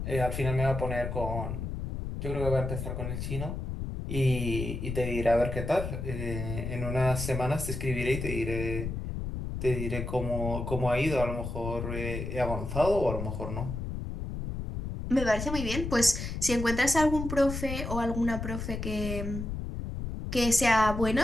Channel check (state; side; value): noise; left; rumble, 5 dB below the sound